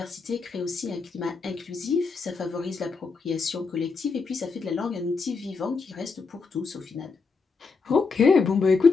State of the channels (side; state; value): right; quieter; 4.7 dB